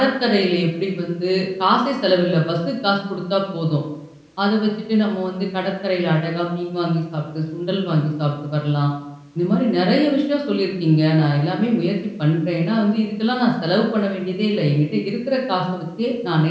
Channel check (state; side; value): identical; both; correlation 1.00